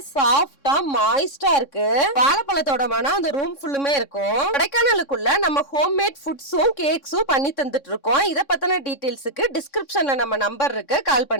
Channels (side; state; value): right; late; 3.6 ms